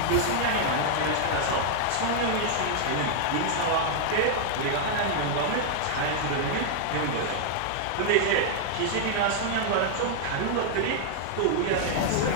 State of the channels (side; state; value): both; different; correlation 0.00